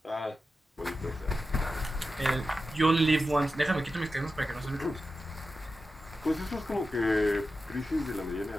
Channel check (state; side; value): normal; both; correlation 0.92